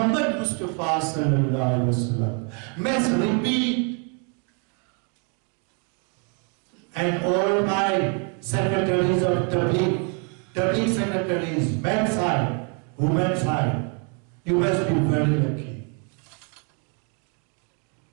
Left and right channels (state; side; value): quieter; left; 38.1 dB